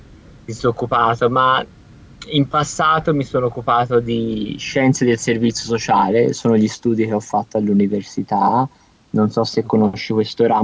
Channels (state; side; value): identical; both; correlation 1.00